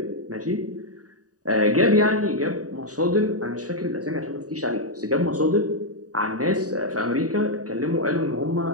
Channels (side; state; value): left; late; 0.67 ms